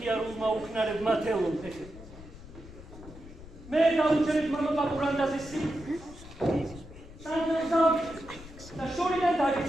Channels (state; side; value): noise; left; rumble, 17 dB below the sound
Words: უქნარებმა თელონ ფეხი. მე დაუჩერეთ მამა პაპურანდაზის სანჯელს და შორიდან